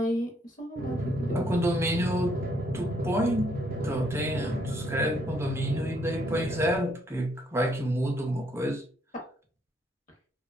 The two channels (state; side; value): normal; both; correlation 0.71